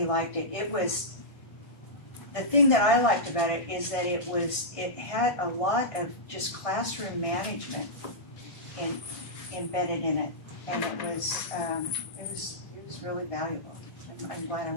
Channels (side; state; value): right; late; 1.5 ms